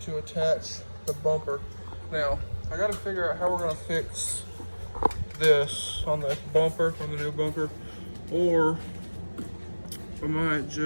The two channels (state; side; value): inverted; both; correlation -1.00